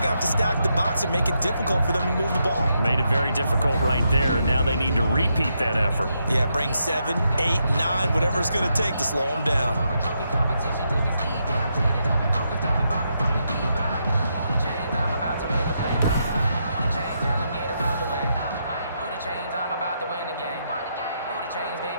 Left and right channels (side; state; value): both; inverted; correlation -0.81